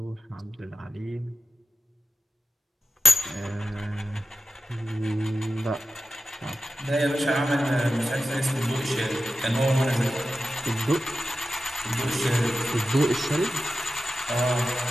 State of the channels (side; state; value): both; normal; correlation 0.92